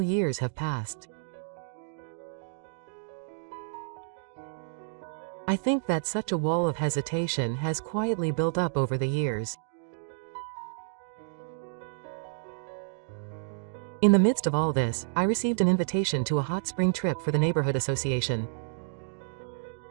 years have passed. I think that such a wall of hesitation has quietly built up over the years. In the midst of all this, I received an invitation to a hot spring trip for the neighborhood association.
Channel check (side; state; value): left; silent; digital silence